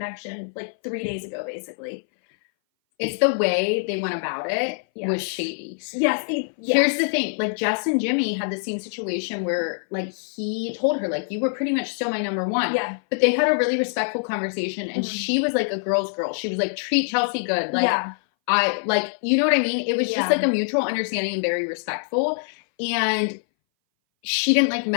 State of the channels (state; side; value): silent; right; 60 dB below the other